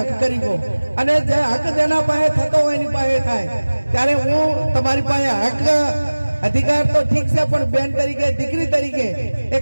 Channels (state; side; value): inverted; both; correlation -1.00